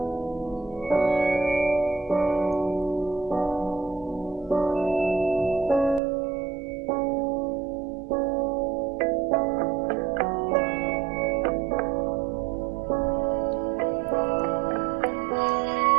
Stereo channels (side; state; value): left; drops out; at 6.0 s